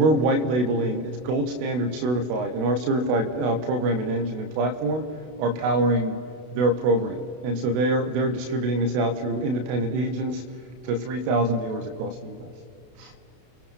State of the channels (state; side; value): late; left; 32 ms